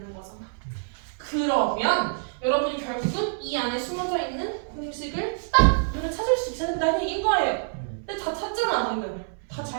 거잖아. 그러면 여러분이 결국은 이 안에 숨어져 있는 공식을 딱 눈에 찾을 수 있어야 된다는 얘기인 거예요. 근데 다 찾잖아 방금. 다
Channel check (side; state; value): left; silent; 61 dB below the other